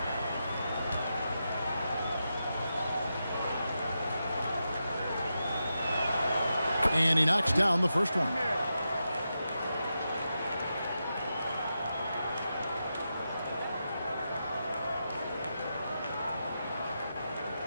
And he knocks down the first one.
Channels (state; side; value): inverted; both; correlation -0.88